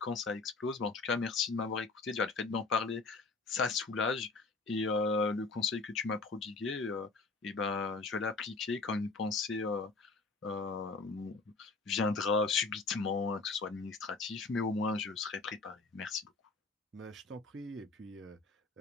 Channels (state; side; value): quieter; right; 3.9 dB